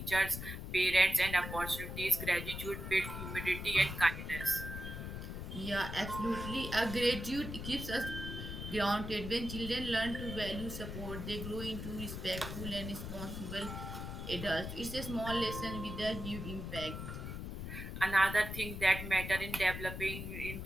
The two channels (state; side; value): noise; left; rumble, 6 dB below the sound